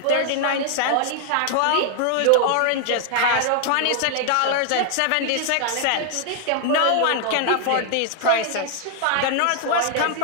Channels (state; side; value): different; both; correlation 0.00